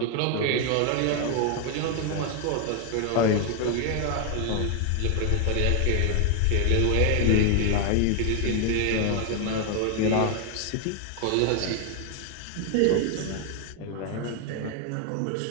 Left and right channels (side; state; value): both; different; correlation 0.00